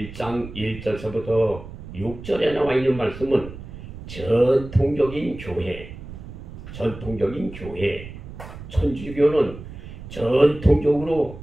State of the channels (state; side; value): noise; right; rumble, 13 dB below the sound